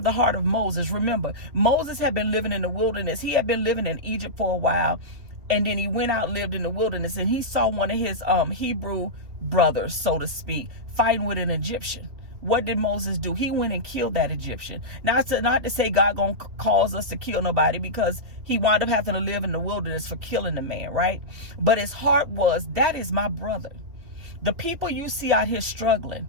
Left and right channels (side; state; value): left; late; 2.6 ms